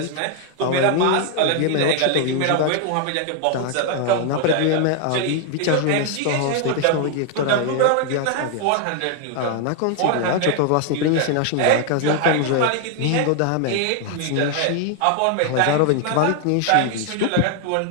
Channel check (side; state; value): both; different; correlation 0.00